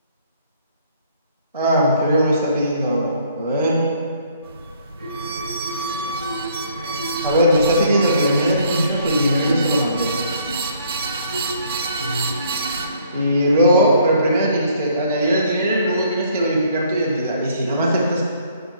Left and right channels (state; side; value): inverted; both; correlation -0.63